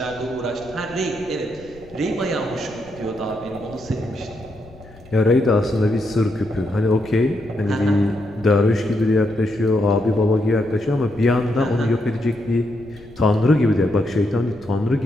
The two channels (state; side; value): noise; left; rumble, 22 dB below the sound